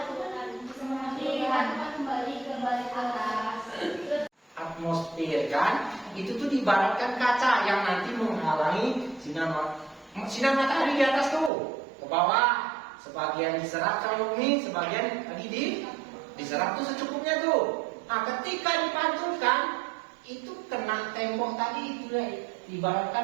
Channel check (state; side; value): drops out; left; at 11.5 s